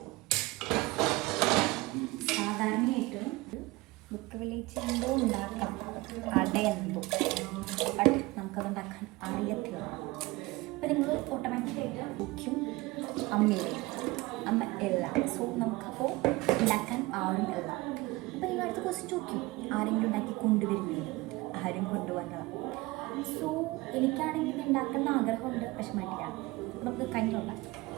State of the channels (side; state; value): left; quieter; 21.6 dB